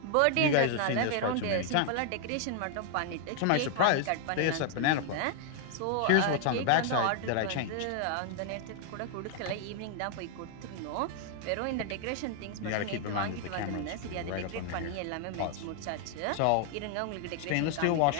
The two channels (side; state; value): both; different; correlation 0.00